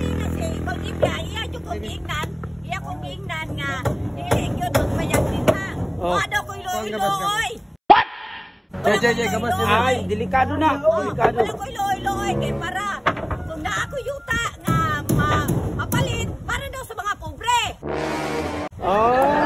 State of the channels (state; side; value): identical; both; correlation 1.00